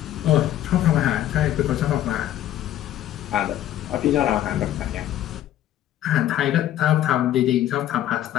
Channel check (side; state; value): right; quieter; 12.4 dB